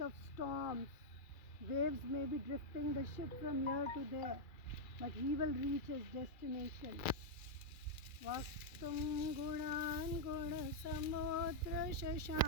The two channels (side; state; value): right; late; 2.3 ms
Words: of storms. Waves may be drifting the ship from here to there, but he will reach his destination. Vaktum gunan guna samudra